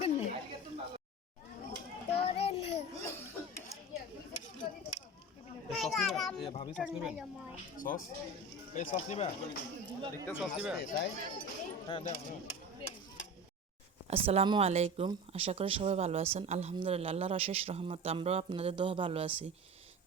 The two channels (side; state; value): both; normal; correlation 0.31